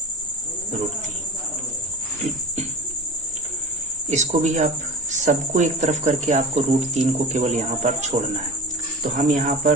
√3। इसको भी आप सबको एक तरफ करके आपको √3 को केवल यहाँ पर छोड़ना है। तो हम यहाँ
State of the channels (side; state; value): both; normal; correlation 0.29